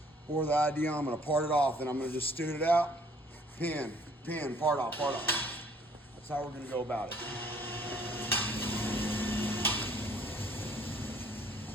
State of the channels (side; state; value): both; normal; correlation 0.60